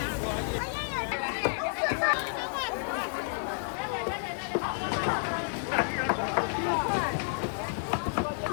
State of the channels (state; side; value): silent; right; digital silence